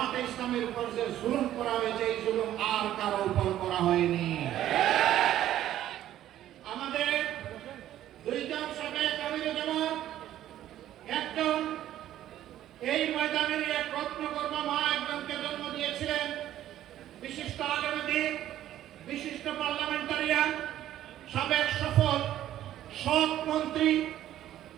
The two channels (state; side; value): quieter; left; 12.5 dB